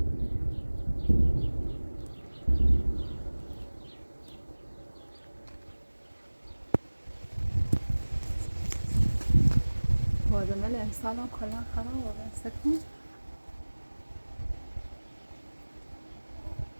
بادمل امسال هم کلا خراب است کن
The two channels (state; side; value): inverted; both; correlation -1.00